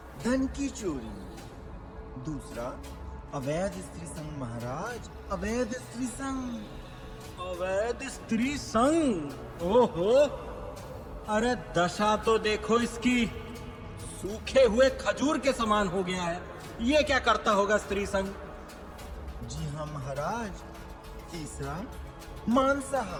धन की चोरी। दूसरा, अवैध स्त्री संग। महाराज, अवैध स्त्री संग। अवैध स्त्री संग? ओहो, अरे दशा तो देखो इसकी, सूखे हुए खजूर के समान हो गया है। ये क्या करता होगा स्त्री संग? जी हाँ महाराज। तीसरा,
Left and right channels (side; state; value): both; identical; correlation 1.00